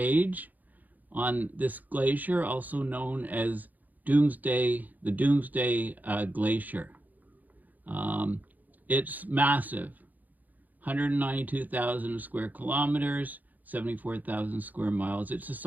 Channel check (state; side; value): late; left; 0.082 ms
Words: on this glacier, also known as the Doomsday Glacier. It's massive, 192,000 square kilometers, 74,000 square miles. It's the